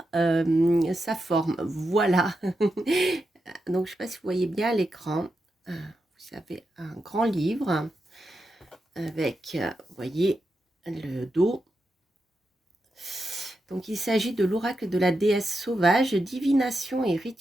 sa forme. Voilà. Donc, je ne sais pas si vous voyez bien à l'écran. Vous avez un grand livre avec, vous voyez, le dos. Donc, il s'agit de l'oracle de la déesse sauvage, divination et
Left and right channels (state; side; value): normal; both; correlation 0.87